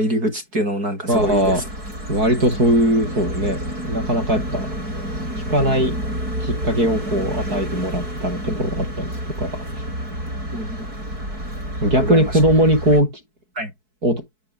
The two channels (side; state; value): left; late; 4.6 ms